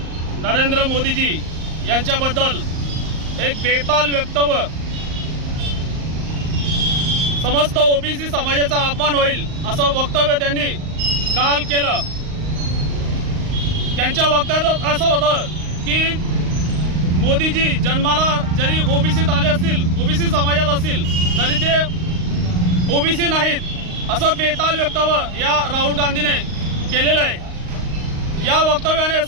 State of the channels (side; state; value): left; late; 38 ms